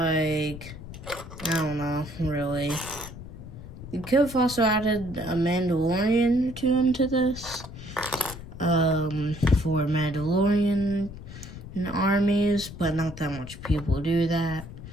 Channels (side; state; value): left; noise; rumble, 13 dB below the sound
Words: I don't know, really. You could have also added a Mandalorian or two into this. For Mandalorian armies, but not that much people do that.